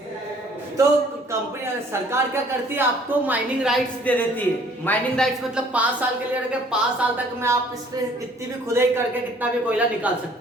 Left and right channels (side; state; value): both; normal; correlation 0.57